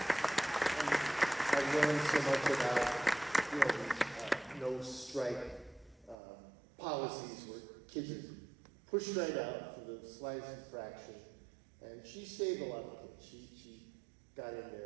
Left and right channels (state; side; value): drops out; left; at 6.2 s